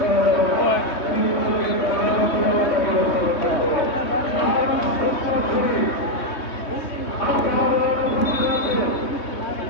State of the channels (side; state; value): right; late; 3.2 ms